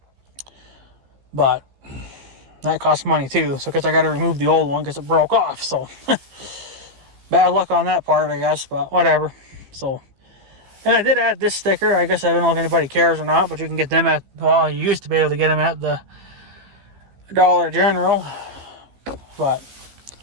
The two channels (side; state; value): left; late; 15 ms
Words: but that costs money too. So, because I got to remove the old one because it broke off. So, bad luck on that part, I guess, but whatever. So, and I did add this sticker. I guess I don't know if anybody cares or not, but you can get them at, well, you used to be able to get them at the Dollar General, but